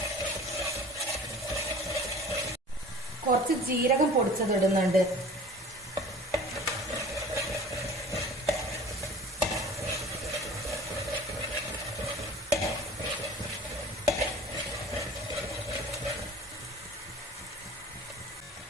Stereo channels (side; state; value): both; normal; correlation 0.43